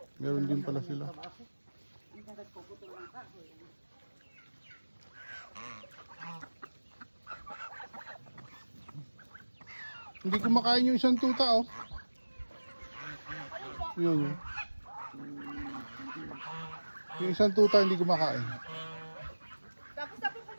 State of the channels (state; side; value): inverted; both; correlation -1.00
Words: Meron din pala sila. Hindi kumakain yung isang tuta, oh. Yun, yun. Yung isang tuta hindi kumakain. Tapos na po